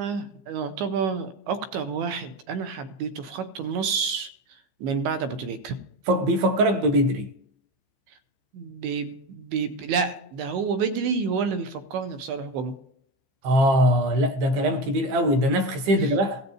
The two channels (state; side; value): late; left; 15 ms